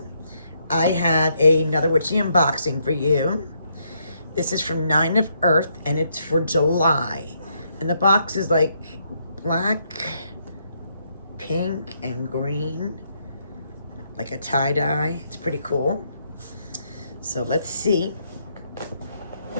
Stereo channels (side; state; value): both; inverted; correlation -0.75